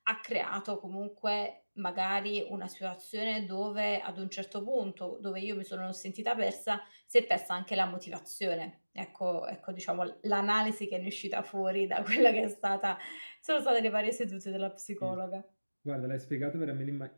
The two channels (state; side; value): inverted; both; correlation -1.00